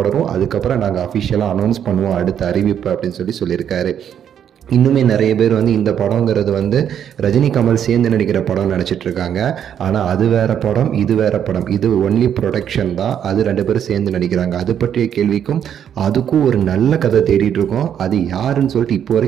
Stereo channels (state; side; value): quieter; left; 9.1 dB